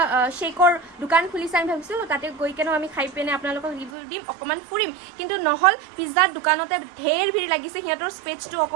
শ্বেকৰ দোকান খুলিছে আমি ভাবিছিলোঁ তাতে গৈ কেনেও আমি খাই পিনে আপোনালোকক ৰিভিউ দিম অকণমান ফুৰিম কিন্তু নহ'ল পিজ্জাৰ দোকানতে ঢেৰ ভিৰ লাগিছে সিহঁতৰ স্পেচটো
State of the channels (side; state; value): left; drops out; at 3.9 s